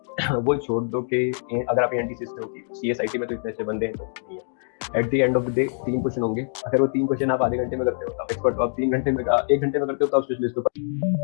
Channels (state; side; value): silent; right; digital silence